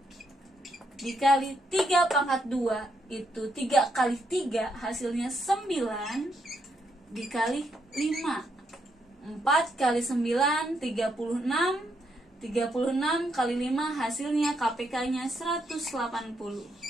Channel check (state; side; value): normal; both; correlation 0.78